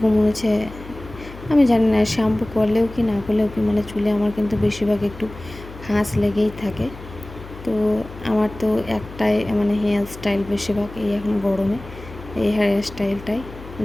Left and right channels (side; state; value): left; noise; hum, 16 dB below the sound